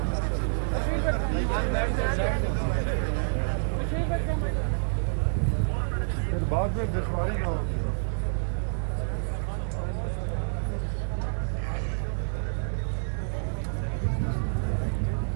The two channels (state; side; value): silent; left; digital silence